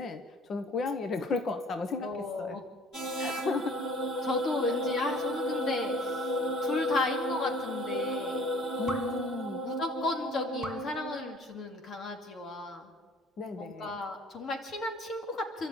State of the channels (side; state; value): both; normal; correlation 0.52